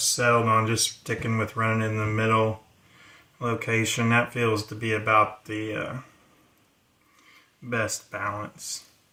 on just sticking with running in the middle location. That feels to be about the best balance.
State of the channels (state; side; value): identical; both; correlation 1.00